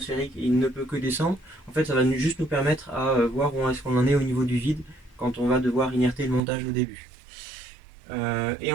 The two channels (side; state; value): left; drops out; at 6.4 s